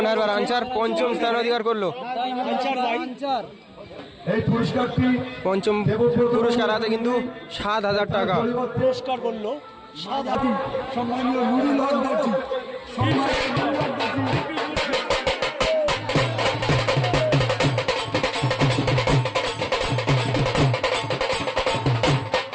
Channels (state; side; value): identical; both; correlation 1.00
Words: হারবার আনচার পঞ্চম স্থান অধিকার করলো। এই পুরস্কারটি পঞ্চম পুরস্কার আছে কিন্তু 7,000 টাকা। পুরস্কার করলো সম্মানীয় নুরুল হক দর্জি,